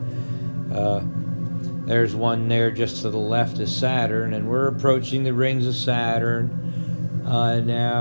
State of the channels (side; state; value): both; inverted; correlation -1.00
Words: There's one there just to the left of Saturn, and we're approaching the rings of Saturn.